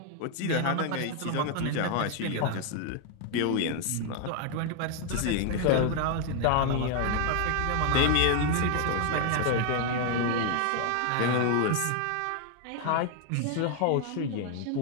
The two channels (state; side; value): different; both; correlation 0.00